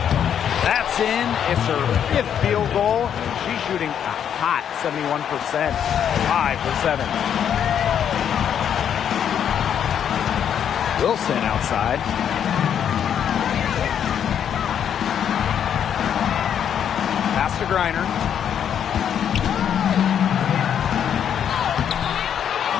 That's in. It's her 5th field goal. She's shooting a hot 71%. 5 for 7. Wilson outside. Pass to Griner.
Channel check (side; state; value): right; quieter; 8.8 dB